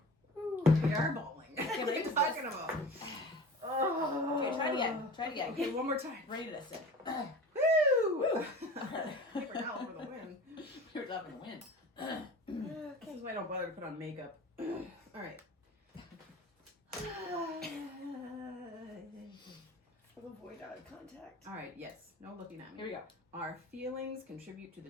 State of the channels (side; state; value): both; normal; correlation 0.38